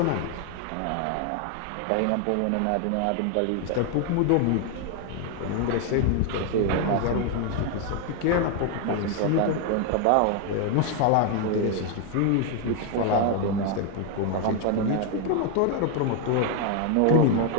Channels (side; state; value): both; different; correlation 0.01